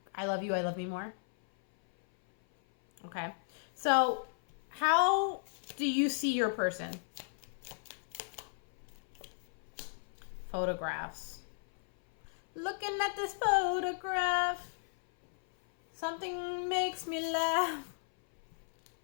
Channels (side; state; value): right; silent; 54 dB below the other